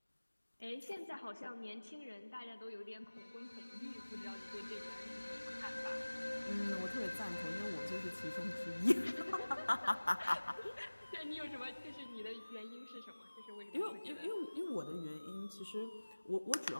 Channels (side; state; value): both; inverted; correlation -1.00